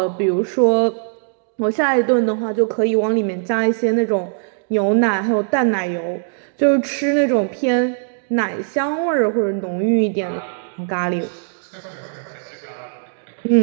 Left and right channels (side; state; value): left; silent; 66 dB below the other